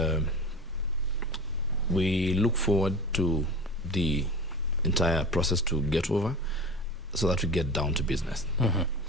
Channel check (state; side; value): normal; both; correlation 0.34